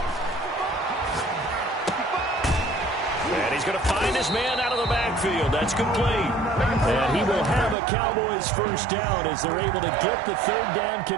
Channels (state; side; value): drops out; left; at 7.8 s